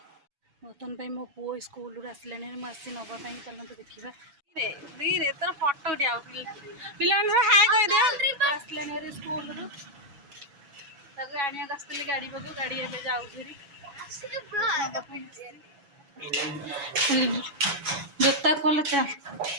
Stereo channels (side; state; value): left; late; 7.1 ms